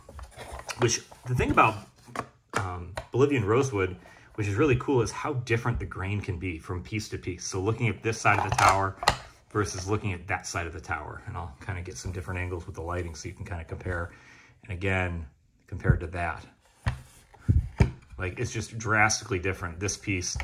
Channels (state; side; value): identical; both; correlation 1.00